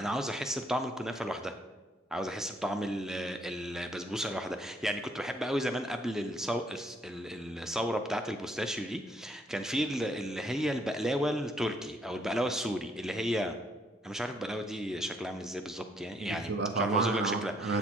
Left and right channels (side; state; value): both; normal; correlation 0.68